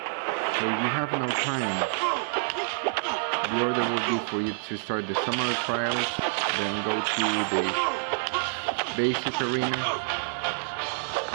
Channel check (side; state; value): left; silent; 60 dB below the other